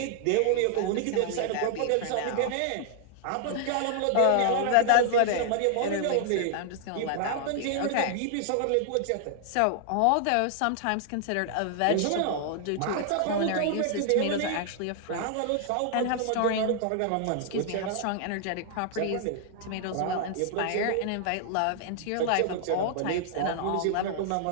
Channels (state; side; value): different; both; correlation -0.01